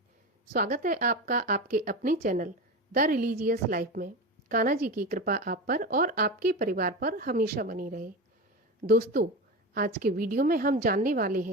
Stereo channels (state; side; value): normal; both; correlation 0.23